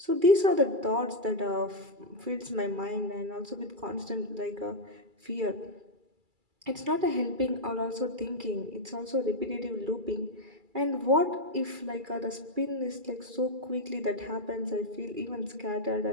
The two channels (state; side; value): late; left; 2.3 ms